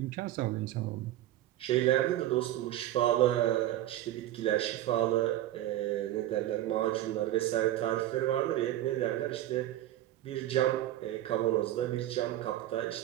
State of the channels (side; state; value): left; quieter; 13.8 dB